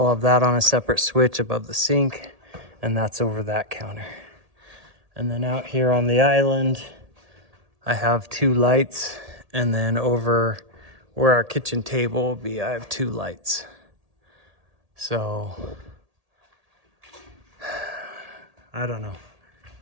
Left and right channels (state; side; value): late; left; 1.8 ms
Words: have that on a separate switch above the sink, and that's over that counter. And then out here on the island, I have 2 lights, and then over where our kitchen table will be, I have 2 lights. So, I don't know.